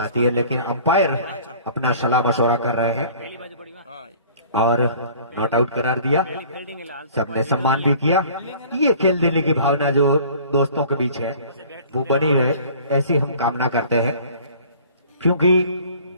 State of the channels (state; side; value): inverted; both; correlation -0.49